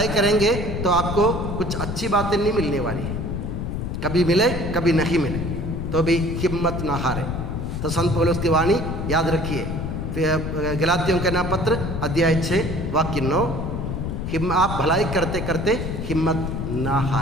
करेंगे तो आपको कुछ अच्छी बातें नहीं मिलने वाली, कभी मिले कभी नहीं मिले, तो भी हिम्मत ना हारे। तो संत पौलुस की वाणी याद रखिए, गलातियों का नाम पत्र अध्याय 6 वाक्य 9। आप भलाई करते करते हिम्मत ना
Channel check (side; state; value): left; noise; rumble, 4 dB below the sound